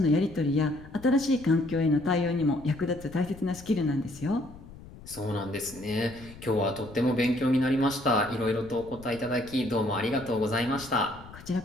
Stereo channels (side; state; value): left; noise; rumble, 18 dB below the sound